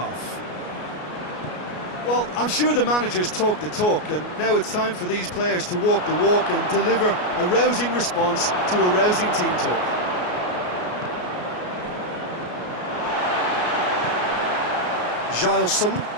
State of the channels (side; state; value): right; late; 33 ms